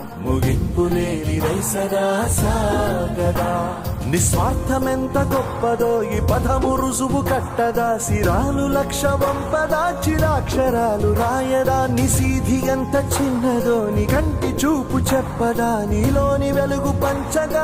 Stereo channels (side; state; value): both; identical; correlation 1.00